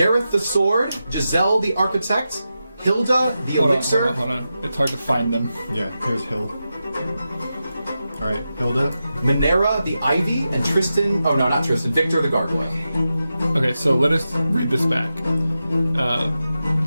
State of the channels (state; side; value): inverted; both; correlation -0.90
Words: the Sword, Giselle the Architect, Hilda the Elixir. Hold on. It's hard to find them. Yeah, here's Hill. Alright, Hilda. Minera the Ivy, and Tristan, oh no, not Tristan, Victor the Gargoyle. Okay, so let us read this back.